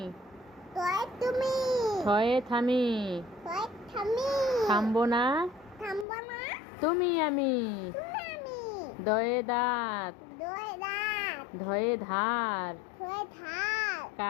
তয় তুমি থয়ে থামি। তয় থামি থামবো না থামব না তুমি আমি। তুমি আমি দয়ে দাঁত দয় দাঁত ধয়ে ধার। ধয়ে ধার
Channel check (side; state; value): right; drops out; at 6.1 s